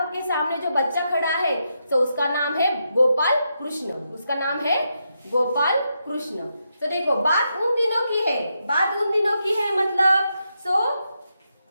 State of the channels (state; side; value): inverted; both; correlation -0.83